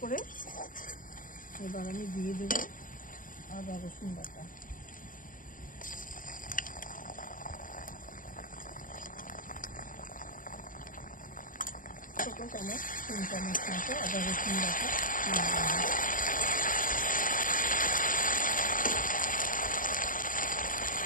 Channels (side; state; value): right; late; 0.39 ms